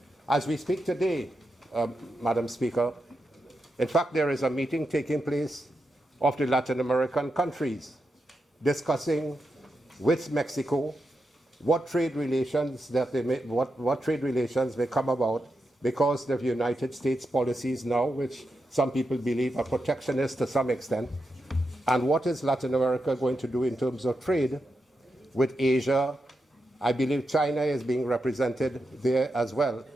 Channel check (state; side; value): normal; both; correlation 0.87